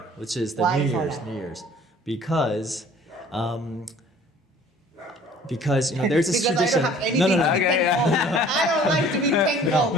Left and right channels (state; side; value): normal; both; correlation 0.51